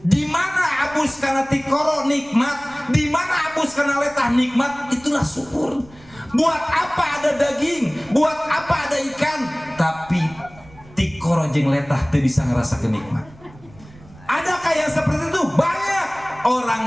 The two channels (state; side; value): noise; right; rumble, 23 dB below the sound